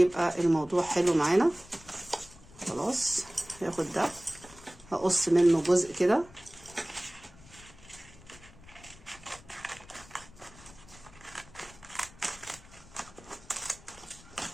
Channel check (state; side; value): noise; left; rumble, 22 dB below the sound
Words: الموضوع حلو معانا. خلاص، هاخد ده هقص منه جزء كده.